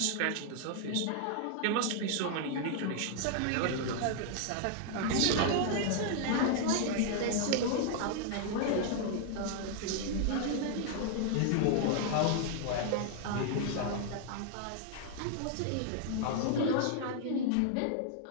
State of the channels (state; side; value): different; both; correlation 0.00